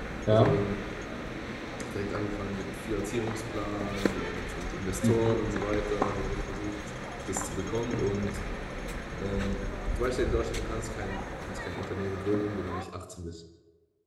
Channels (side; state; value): both; identical; correlation 1.00